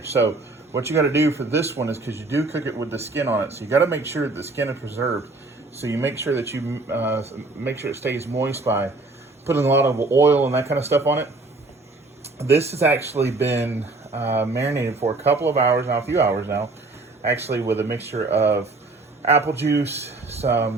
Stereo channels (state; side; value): quieter; left; 3.3 dB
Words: So what you got to do for this one is, because you do cook it with the skin on it, so you got to make sure that the skin is preserved. So you make sure that you make sure it stays moist by putting a lot of oil and that kind of stuff on it. This has actually been marinated for a couple of hours now, a few hours now, actually, with a mixture of apple juice,